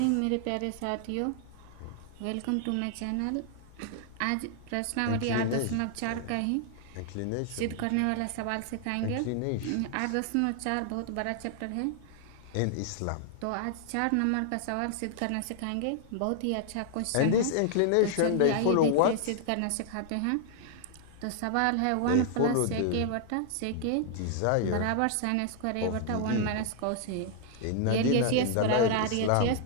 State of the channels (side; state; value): both; different; correlation 0.00